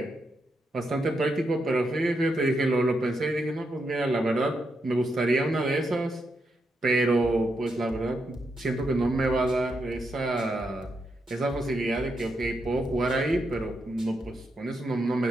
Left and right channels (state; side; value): normal; both; correlation 0.83